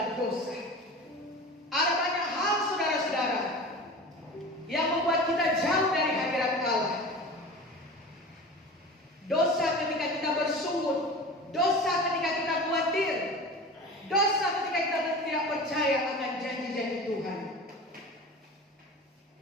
dosa. Ada banyak hal, saudara-saudara, yang membuat kita jauh dari hadirat Allah. Dosa ketika kita bersungut, dosa ketika kita khawatir, dosa ketika kita tidak percaya akan janji-janji Tuhan.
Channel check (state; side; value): normal; both; correlation 0.34